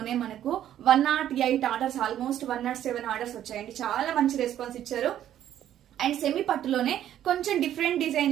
మనకు 108 ఆర్డర్స్, ఆల్మోస్ట్ 107 ఆర్డర్స్ వచ్చాయండి. చాలా మంచి రెస్పాన్స్ ఇచ్చారు. అండ్ సెమీ పట్టులోనే కొంచెం డిఫరెంట్ డిజైన్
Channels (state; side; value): quieter; left; 11.3 dB